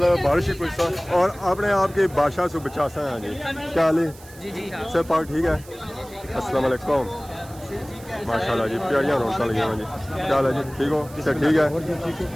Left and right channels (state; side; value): noise; right; hiss, 21 dB below the sound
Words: बारिश ही कुछ और अपने आप की बादशाह से बचा सा है जी। क्या हाल है सब पाक ठीक है? अस्सलाम वालेकुम माशाल्लाह जी प्यारियाँ रौनक लगी हुई जी। क्या हाल है जी ठीक हो? ठीक है